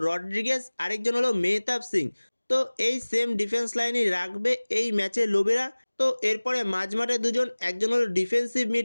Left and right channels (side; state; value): both; inverted; correlation -1.00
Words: রড্রিগেজ, আরেকজন হলো মেহতাব সিং। তো এই সেম ডিফেন্স লাইনই রাখবে এই ম্যাচে লোবেরা। তো এরপরে মাঝমাঠে দুজন, একজন হলো ডিফেন্সিভ